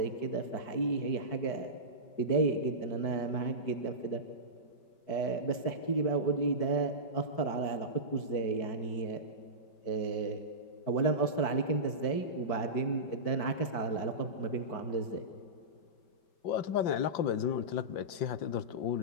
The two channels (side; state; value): right; late; 5.2 ms